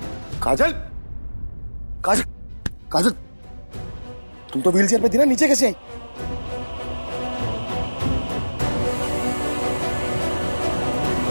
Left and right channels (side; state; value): both; inverted; correlation -1.00